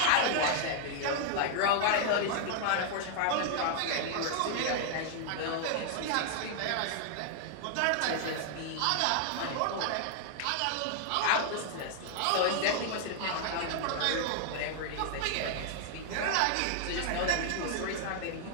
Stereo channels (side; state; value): both; different; correlation 0.00